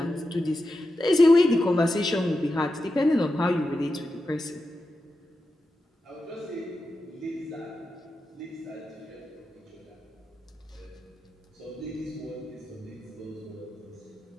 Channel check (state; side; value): normal; both; correlation 0.90